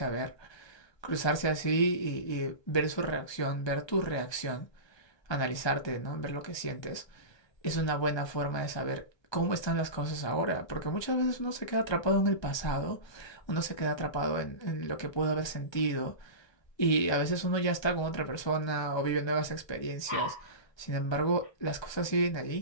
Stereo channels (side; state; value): right; late; 1.3 ms